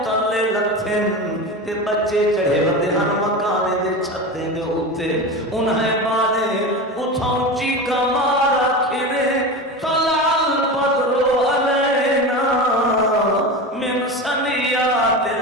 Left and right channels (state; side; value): normal; both; correlation 0.26